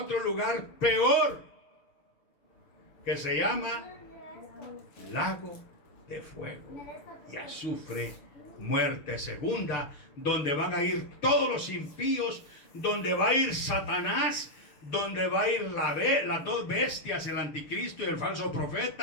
lugar peor, que se llama lago de fuego y azufre, muerte segunda, donde van a ir todos los impíos, donde va a ir Satanás, donde va a ir las dos bestias, el anticristo y el falso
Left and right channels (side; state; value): right; late; 6.4 ms